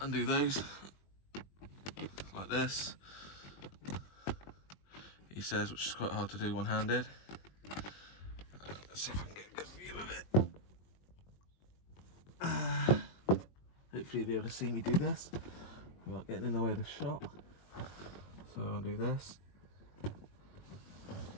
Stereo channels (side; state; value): right; late; 21 ms